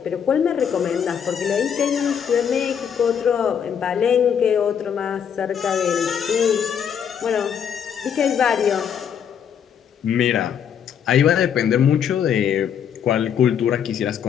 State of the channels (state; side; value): quieter; right; 8.1 dB